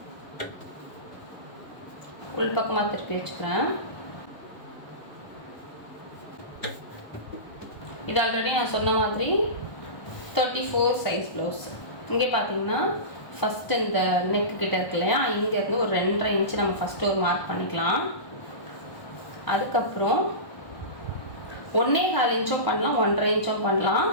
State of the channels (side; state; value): right; late; 1.3 ms